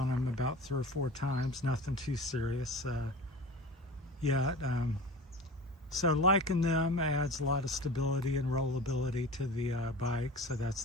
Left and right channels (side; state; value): both; normal; correlation 0.35